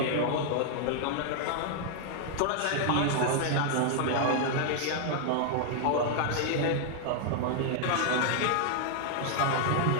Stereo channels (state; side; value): different; both; correlation 0.00